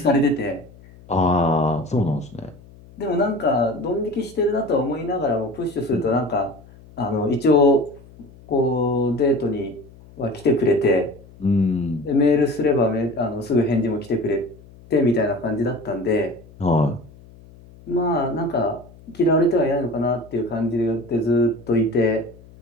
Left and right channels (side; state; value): left; noise; hum, 23 dB below the sound